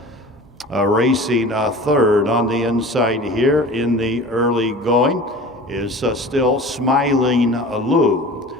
Racing third on the inside here in the early going is still Smiling Lou.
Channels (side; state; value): both; normal; correlation 0.39